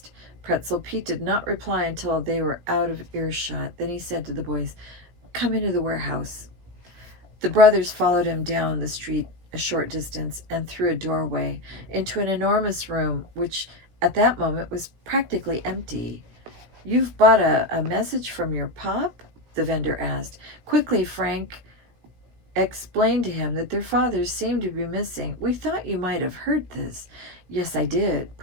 Pretzel Pete did not reply until they were out of earshot. Then he said to the boys, come into the warehouse. The brothers followed him down the street a short distance and through a doorway into an enormous room which at that moment was practically empty. You've bought a message from your pop? The vendor asked. Quickly, Frank explained to him that their fathers seemed to be missing. We thought you might have heard this. Yes, I did,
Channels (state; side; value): late; left; 17 ms